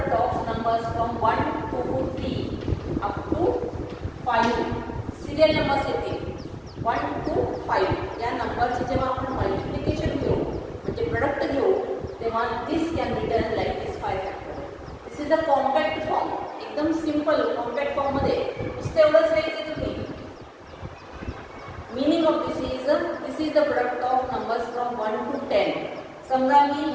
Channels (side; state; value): both; identical; correlation 1.00